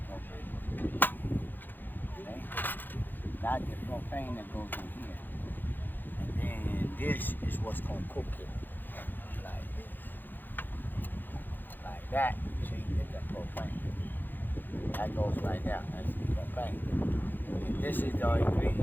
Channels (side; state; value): right; late; 0.090 ms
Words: propane. Okay? That's the propane that goes in here. And then this is what's going to cook it. Like this. Like that. See, that's the propane. That goes right there. That's the propane. And this is the